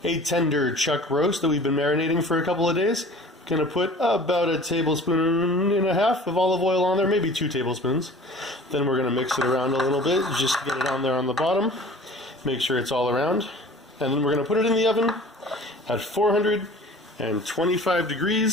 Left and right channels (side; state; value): both; normal; correlation 0.45